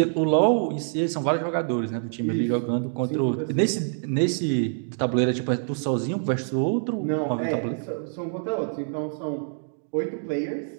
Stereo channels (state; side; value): silent; left; digital silence